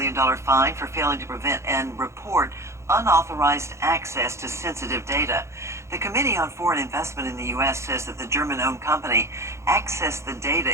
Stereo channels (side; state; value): left; late; 0.14 ms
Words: fine for failing to prevent and report unauthorized access to sensitive data. The Committee on Foreign Investment in the U.S. says that the German-owned company accessed the data